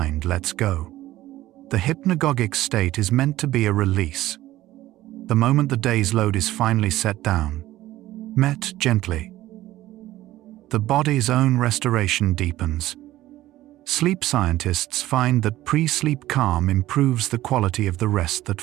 lets go. The hypnagogic state is meant to be a release. The moment the day's load is finally set down, met gently, the body's own restoration deepens. Sleep scientists find that pre-sleep calm improves the quality of the rest that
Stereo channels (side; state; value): left; quieter; 15.5 dB